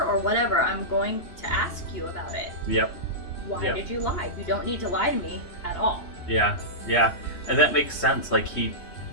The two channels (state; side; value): late; right; 3.1 ms